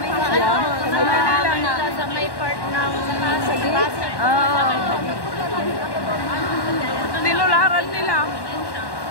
Sa may part ng Pasig. Tinularan nila.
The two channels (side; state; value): right; late; 1.1 ms